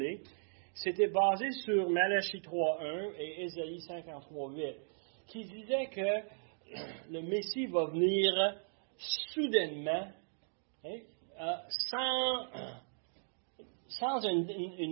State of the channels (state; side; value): silent; left; digital silence